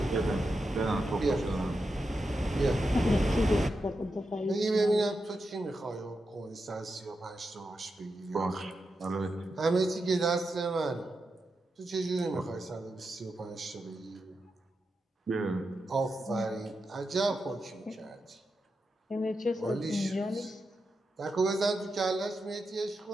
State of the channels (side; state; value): both; normal; correlation 0.88